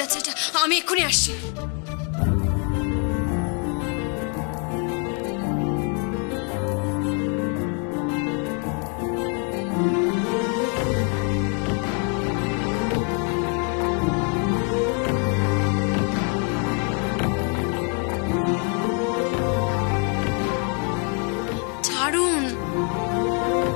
যাচ্ছে এটা। আমি এক্ষুনি আসছি। ছাড়ুন।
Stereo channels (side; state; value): right; quieter; 39.0 dB